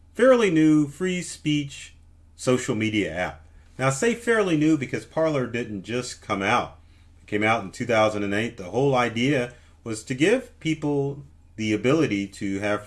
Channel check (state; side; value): identical; both; correlation 1.00